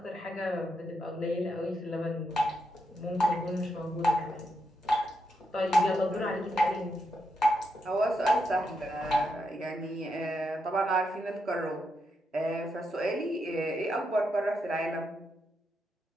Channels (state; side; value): normal; both; correlation 0.82